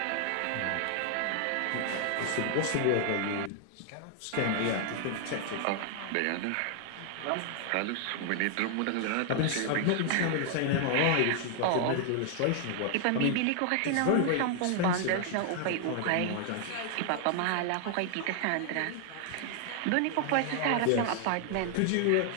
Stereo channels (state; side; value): different; both; correlation 0.00